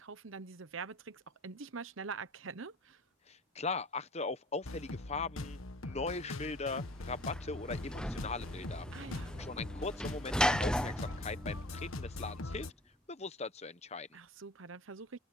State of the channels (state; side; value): normal; both; correlation 0.47